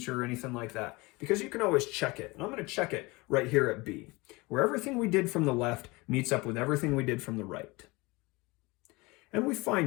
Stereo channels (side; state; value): right; quieter; 24.1 dB